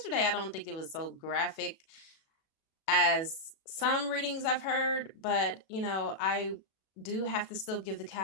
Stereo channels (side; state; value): right; late; 37 ms